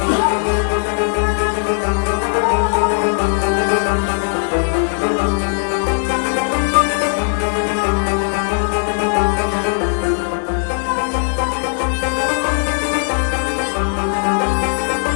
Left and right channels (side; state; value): right; silent; 62 dB below the other